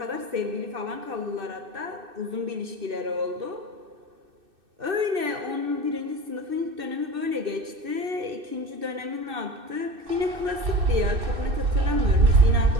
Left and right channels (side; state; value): left; late; 2.6 ms